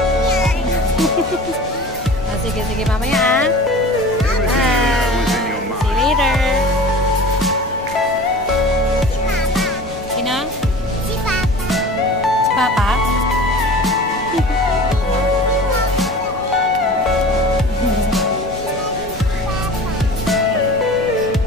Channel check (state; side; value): normal; both; correlation 0.39